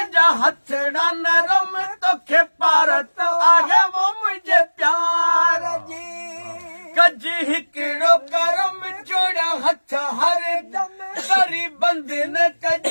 हथड़ा नरम तोखे पारत आहे वो मुझे प्यार जी कज हिकिड़ो करम जोड़ा हथ हर दम करी बंधन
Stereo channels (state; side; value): inverted; both; correlation -1.00